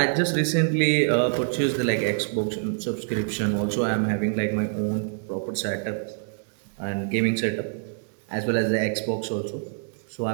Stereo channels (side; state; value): left; silent; digital silence